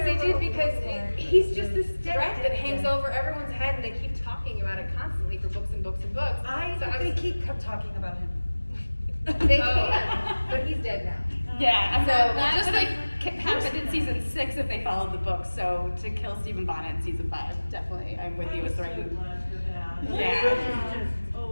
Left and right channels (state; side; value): inverted; both; correlation -1.00